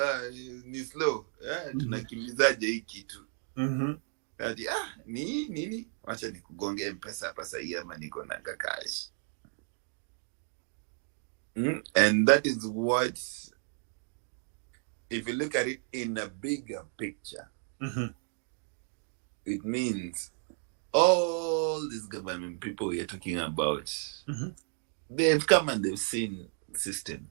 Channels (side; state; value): left; silent; 56 dB below the other